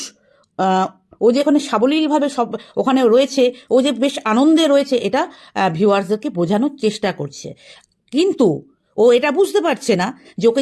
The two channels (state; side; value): identical; both; correlation 1.00